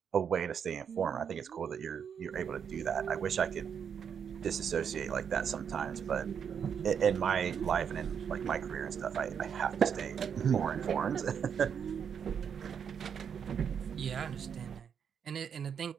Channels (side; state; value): left; quieter; 7.5 dB